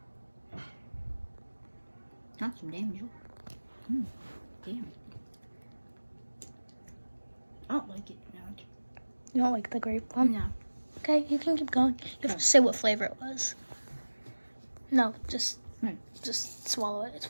not some damage. Damn. I don't like it. No. You don't like the grape one? No. Okay, you can keep going. You have to say what flavor it was. No, just swallow it. It's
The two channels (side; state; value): both; inverted; correlation -1.00